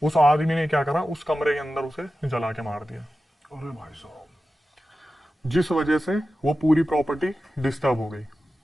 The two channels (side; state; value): both; normal; correlation 0.94